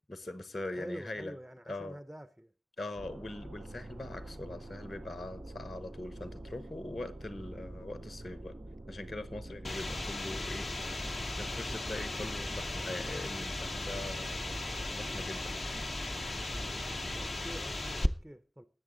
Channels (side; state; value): both; normal; correlation 0.94